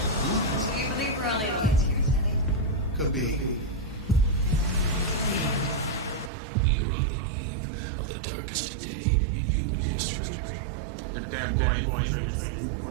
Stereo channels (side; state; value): left; drops out; at 6.3 s